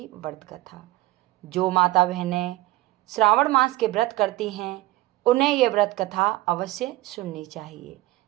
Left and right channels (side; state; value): left; quieter; 18.2 dB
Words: व्रत कथा। जो माता बहनें श्रावण मास के व्रत करती हैं उन्हें यह व्रत कथा अवश्य सुननी चाहिए।